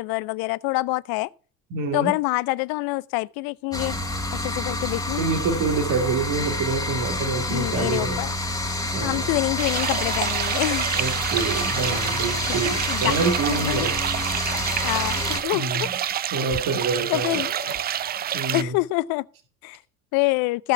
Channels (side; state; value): both; normal; correlation 0.04